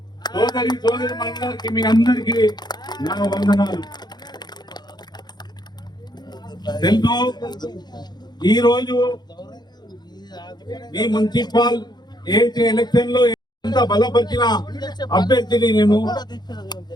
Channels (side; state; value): right; late; 0.20 ms